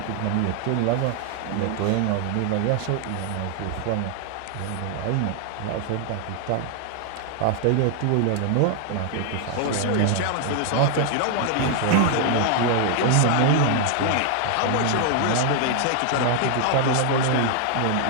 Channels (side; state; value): both; different; correlation 0.00